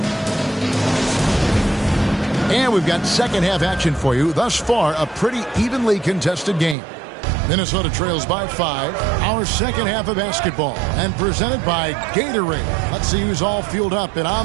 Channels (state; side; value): drops out; left; at 6.8 s